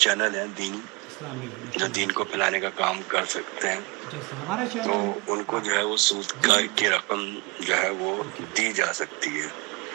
چینل ہیں دینی اسلامی جو دین کو پھیلانے کا کام کر سکتے ہیں، جیسے ہمارا تو چینل ہے ان کو جو ہے وہ سود کی رقم جو ہے وہ دی جا سکتی ہے۔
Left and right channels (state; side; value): quieter; left; 27.7 dB